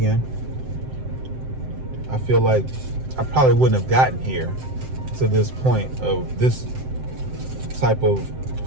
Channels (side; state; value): left; late; 7.7 ms